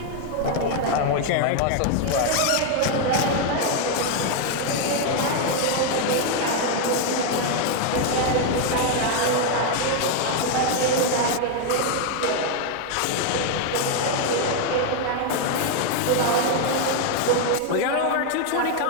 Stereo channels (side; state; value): both; different; correlation 0.01